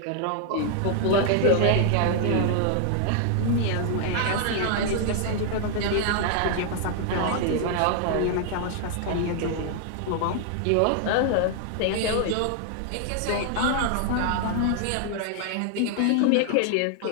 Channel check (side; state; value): both; different; correlation 0.00